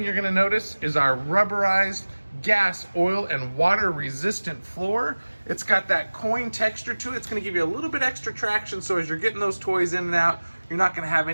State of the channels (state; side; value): inverted; both; correlation -1.00